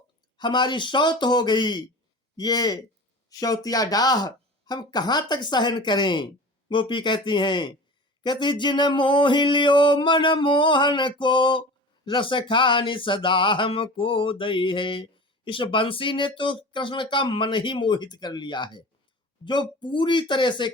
हमारी शौत हो गई, ये शौतिया डाह हम कहाँ तक सहन करें। गोपी कहती हैं, कहती जिन मोह लियो मन मोहन को, रस खानी सदा हमको दई है। इस बंसी ने तो कृष्ण का मन ही मोहित कर लिया है, जो पूरी तरह से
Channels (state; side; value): normal; both; correlation 0.36